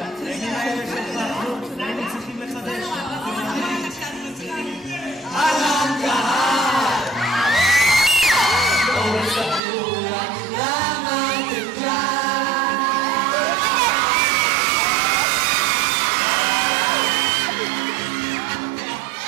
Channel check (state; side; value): drops out; left; at 9.6 s